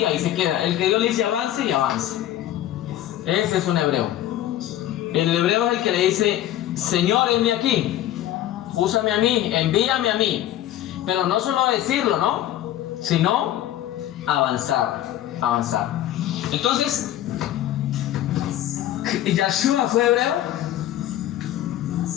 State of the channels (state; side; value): quieter; right; 12.8 dB